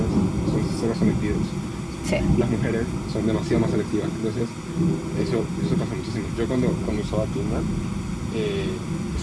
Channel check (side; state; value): both; identical; correlation 1.00